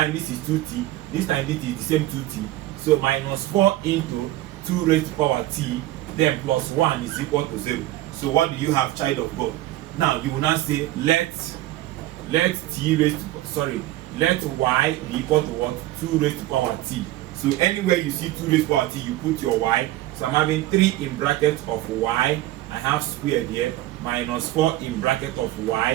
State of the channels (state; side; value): quieter; left; 15.8 dB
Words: this is 2t, this time this is the same 2t. So minus 4 into 2 raised to power t, then plus 1 is equal to 0. So what do you have, child of God? Now you will now say let y be equal to what? 2 raised to power t. So anywhere you see 2 raised to power t, you put your y. So I'm having 3 in bracket of y. I have squared here, minus 4 in bracket of